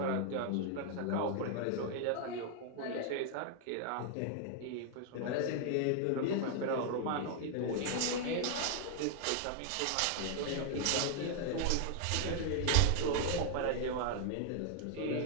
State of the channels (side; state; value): both; different; correlation 0.00